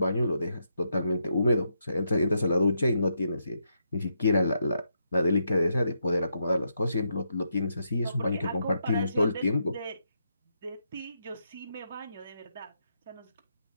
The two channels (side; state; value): both; inverted; correlation -0.80